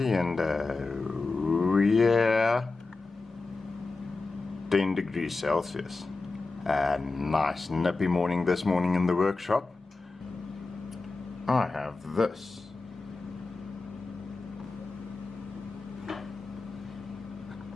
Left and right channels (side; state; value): right; quieter; 3.7 dB